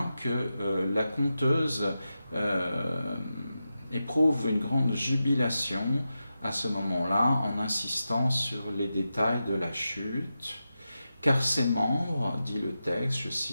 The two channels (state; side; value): inverted; both; correlation -0.91